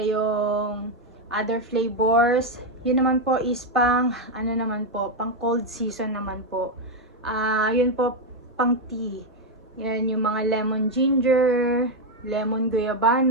other flavors. Yun naman po is pang pang cold season naman po. Yun po pang tea. Yan yung mga lemon ginger, lemon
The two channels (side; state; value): both; normal; correlation 0.04